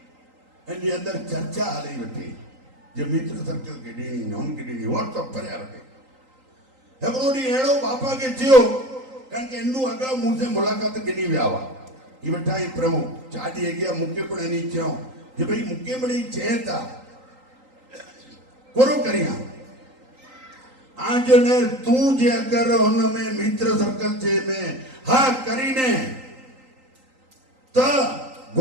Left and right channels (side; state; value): left; late; 3.8 ms